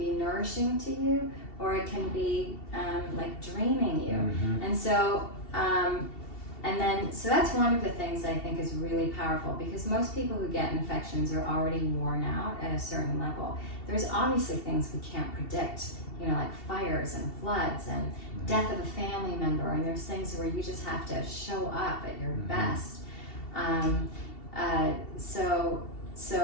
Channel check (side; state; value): right; late; 2.7 ms